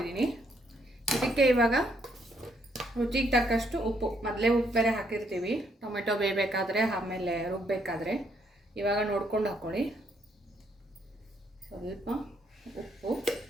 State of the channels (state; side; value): normal; both; correlation 0.72